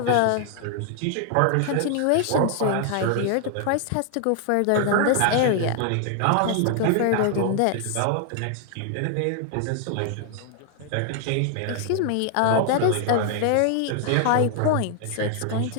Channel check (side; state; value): both; different; correlation 0.00